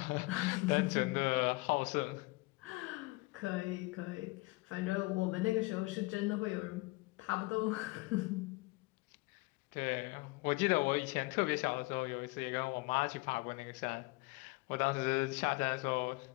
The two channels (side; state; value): right; quieter; 24.1 dB